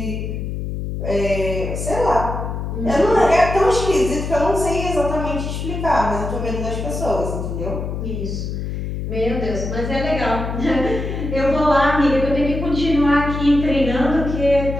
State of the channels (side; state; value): left; noise; hum, 4 dB below the sound